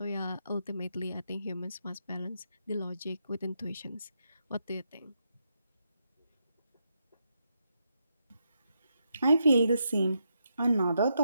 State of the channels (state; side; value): inverted; both; correlation -0.82